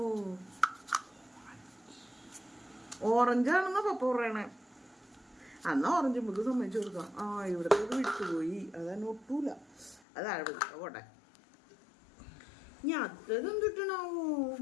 ഓറഞ്ചാണെന്നാ പപ്പ പറയണേ. അന്നാ ഓറഞ്ച് നമുക്ക് സമ്മതിച്ചു കൊടുക്കാം. ആ ഇവിടുത്തെ വിട്ടുപോയി, അതാണ് ഒട്ടൂല. അതാണ് പോട്ടെ. ഞാൻ അതെന്തിട്ടണാവോ?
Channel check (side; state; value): right; drops out; at 10.0 s